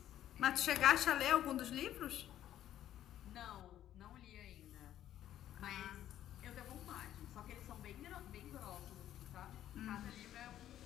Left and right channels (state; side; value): quieter; right; 11.9 dB